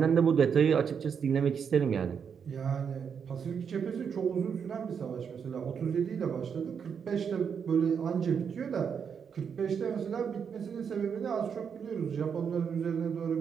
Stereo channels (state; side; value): quieter; left; 6.9 dB